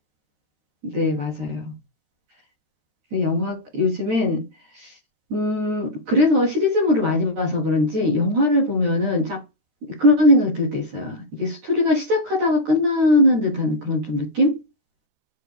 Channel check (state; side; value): late; left; 13 ms